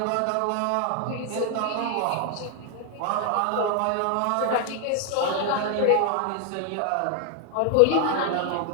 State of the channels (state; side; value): different; both; correlation 0.00